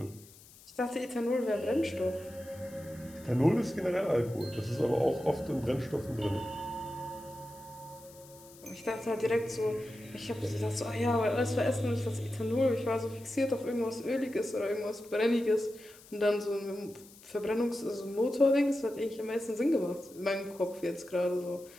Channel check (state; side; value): noise; left; hiss, 22 dB below the sound